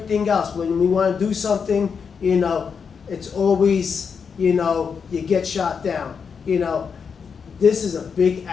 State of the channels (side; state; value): right; quieter; 6.2 dB